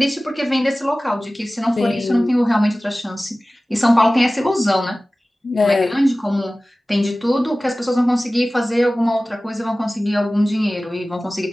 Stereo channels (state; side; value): normal; both; correlation 0.97